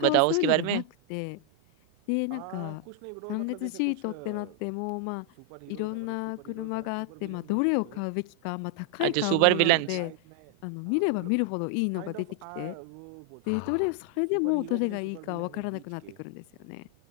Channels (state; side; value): different; both; correlation 0.00